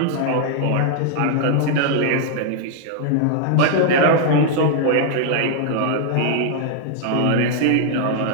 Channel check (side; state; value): both; different; correlation -0.01